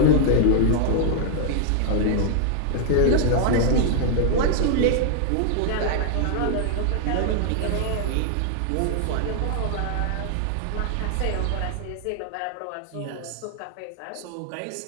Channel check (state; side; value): different; both; correlation -0.01